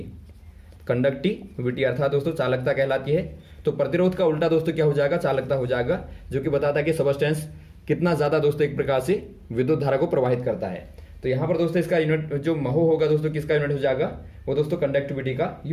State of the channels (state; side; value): identical; both; correlation 1.00